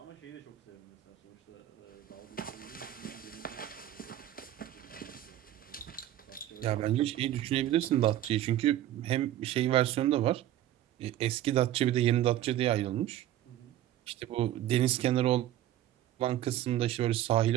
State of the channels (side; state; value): left; quieter; 12.9 dB